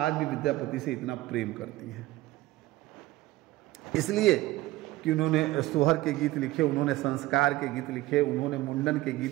भी विद्यापति से इतना प्रेम करती हैं? इसलिए कि उन्होंने सोहर के गीत लिखे, उन्होंने संस्कार के गीत लिखे, उन्होंने मुंडन के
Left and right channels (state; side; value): quieter; left; 17.5 dB